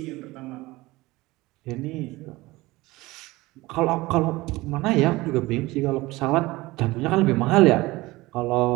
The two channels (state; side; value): quieter; left; 20.2 dB